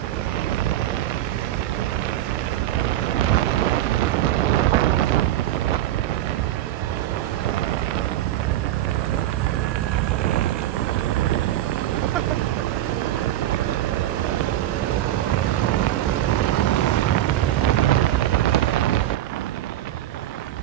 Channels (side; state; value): left; quieter; 13.5 dB